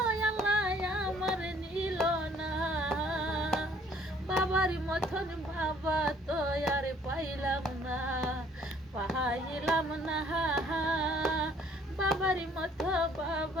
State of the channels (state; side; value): normal; both; correlation 0.59